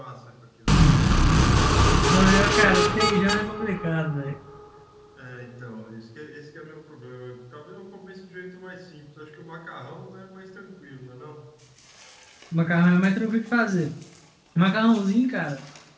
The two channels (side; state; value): both; identical; correlation 1.00